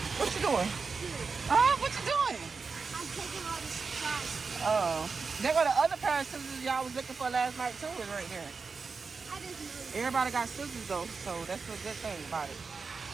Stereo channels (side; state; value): left; quieter; 4.8 dB